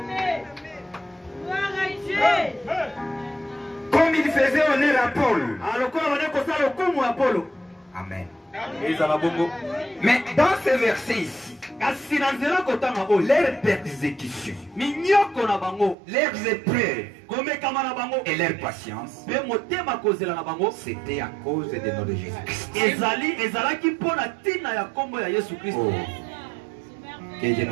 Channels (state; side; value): drops out; left; at 16.0 s